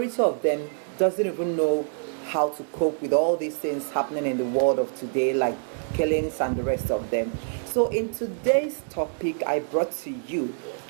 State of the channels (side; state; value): left; silent; digital silence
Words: of them doesn't even know how to cope with all these things happening in the world of today, like killings and the rest of them. So in today's topic, I brought to you